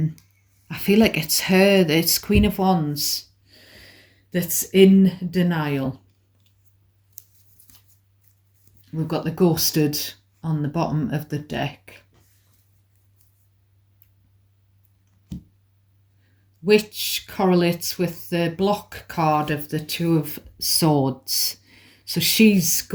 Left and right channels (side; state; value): both; identical; correlation 1.00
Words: feel like it's her, it's Queen of Wands, that's in denial. We've got the ghosted on the bottom of the deck, which correlates with the block card of the Two of Swords. So she's